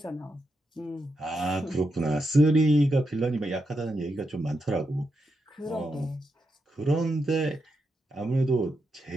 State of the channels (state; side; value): normal; both; correlation 0.84